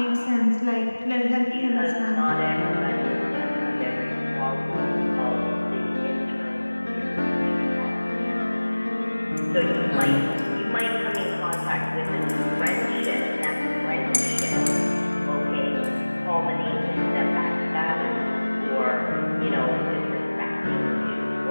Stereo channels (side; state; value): both; inverted; correlation -1.00